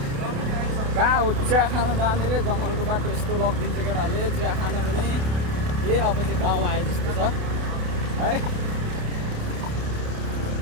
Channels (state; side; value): late; left; 29 ms